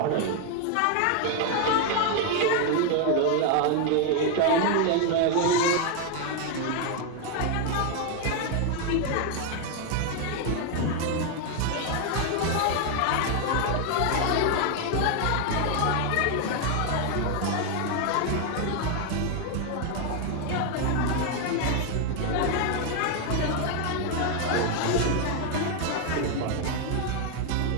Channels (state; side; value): different; both; correlation 0.01